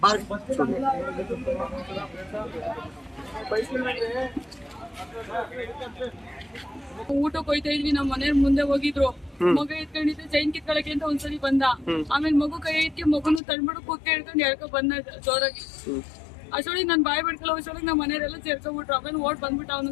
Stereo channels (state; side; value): drops out; right; at 13.4 s